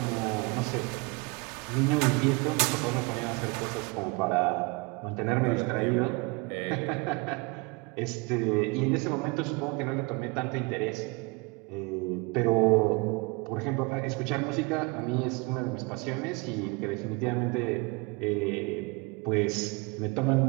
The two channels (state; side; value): quieter; left; 28.1 dB